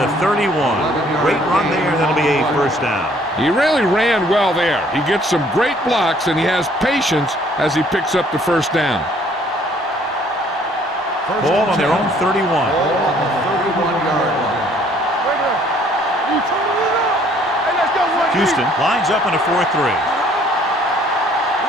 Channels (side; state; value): both; normal; correlation 0.60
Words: 31. Great run there. That'll be a 1st down. He really ran well there. He gets some great blocks, and he has patience as he picks up the 1st down. Ball on their own 31. Ball on the 31-yard line. Houston lines up in a 4-3.